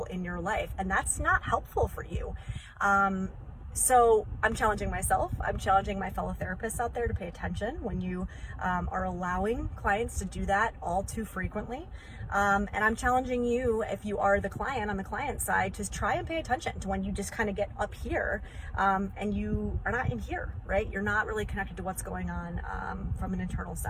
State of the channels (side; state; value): both; identical; correlation 1.00